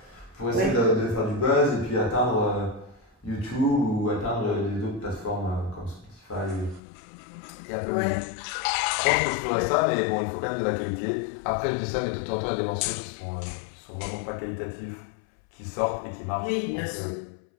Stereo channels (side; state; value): right; drops out; at 6.8 s